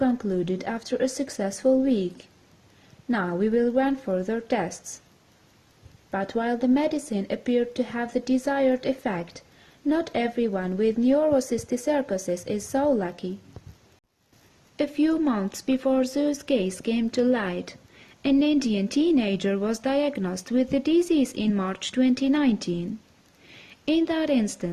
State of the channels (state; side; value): identical; both; correlation 1.00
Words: after a successful week. Now we will run further tests." But while the medicine appeared to have the desired effect, not everyone with neurocysticercosis is so lucky. A few months before Zhu's case came to light, an Indian teenager was diagnosed with the disease in March 2019. In that